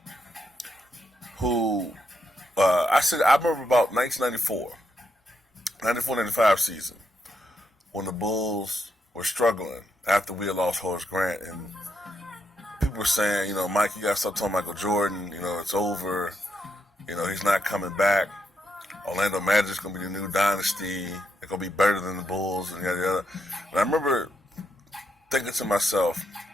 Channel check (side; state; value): both; normal; correlation 0.80